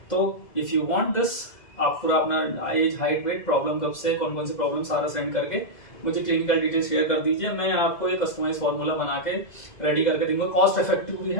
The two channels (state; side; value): late; right; 2.0 ms